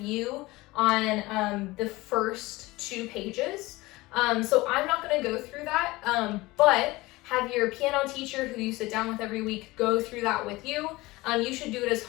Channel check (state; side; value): quieter; right; 20.5 dB